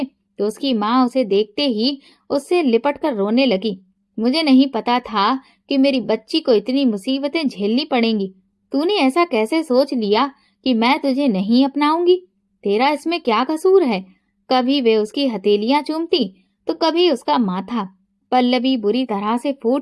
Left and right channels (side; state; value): both; identical; correlation 1.00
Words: तो उसकी माँ उसे देखते ही उससे लिपट कर रोने लगी। मुझे नहीं पता था कि मेरी बच्ची को इतनी मुसीबतें झेलनी पड़ेंगी। तूने ऐसा कैसे सोच लिया कि मैं तुझे नहीं अपनाऊंगी? तेरा इसमें क्या कसूर है? कभी वे उसकी हथेलियां चूमती तो कभी उसका माथा। पल्लवी बुरी तरह से